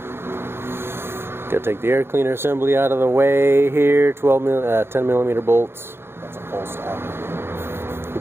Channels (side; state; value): left; late; 0.11 ms